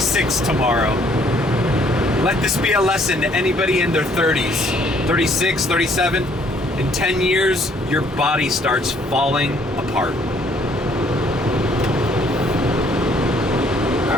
tomorrow. Let this be a lesson to anybody in their 30s, 36, 37. In 10 years, your body starts falling apart.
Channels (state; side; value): normal; both; correlation 0.63